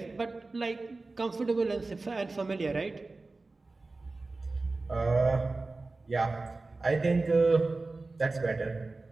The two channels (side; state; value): left; quieter; 3.4 dB